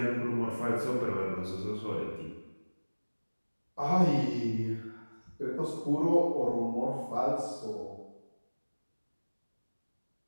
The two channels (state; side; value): inverted; both; correlation -1.00